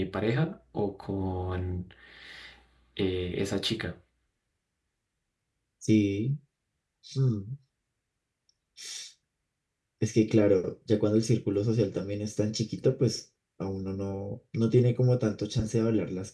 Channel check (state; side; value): identical; both; correlation 1.00